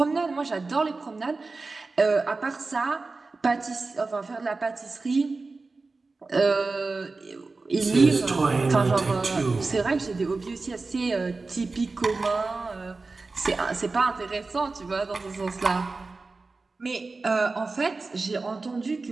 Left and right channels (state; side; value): quieter; left; 3.8 dB